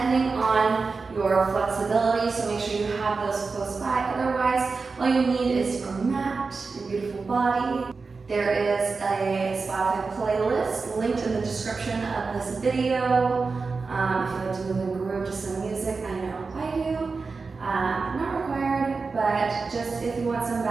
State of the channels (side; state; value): left; quieter; 4.4 dB